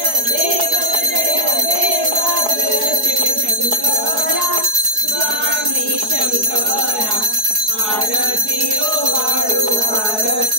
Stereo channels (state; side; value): late; left; 4.7 ms